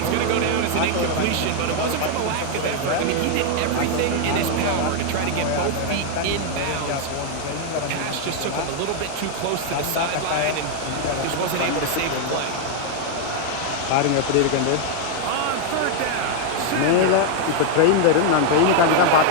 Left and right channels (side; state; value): both; different; correlation 0.00